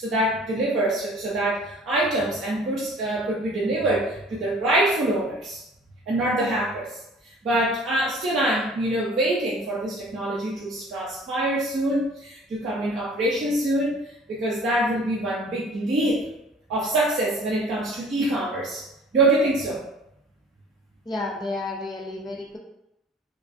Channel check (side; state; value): both; normal; correlation 0.49